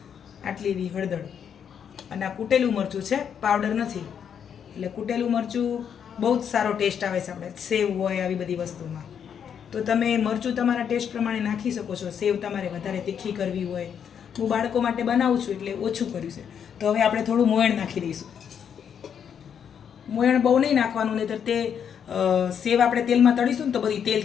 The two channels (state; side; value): quieter; right; 8.0 dB